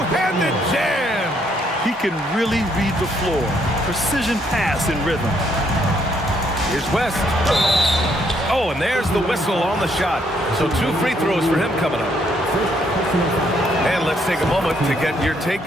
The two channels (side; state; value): both; normal; correlation 0.71